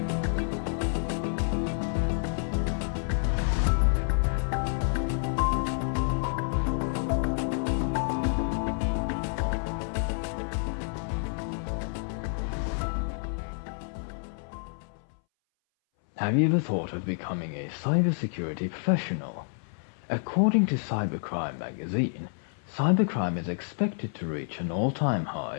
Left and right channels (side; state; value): right; silent; 59 dB below the other